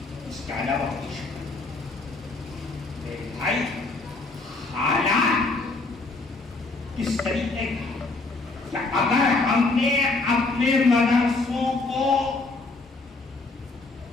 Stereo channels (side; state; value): right; quieter; 3.5 dB